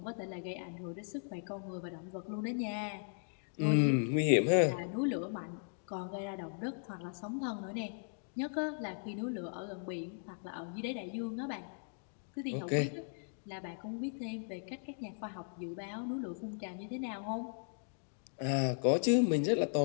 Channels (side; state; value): right; silent; digital silence